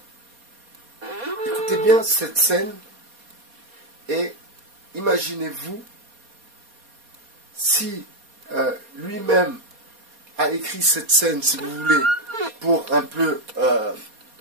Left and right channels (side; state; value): left; late; 4.2 ms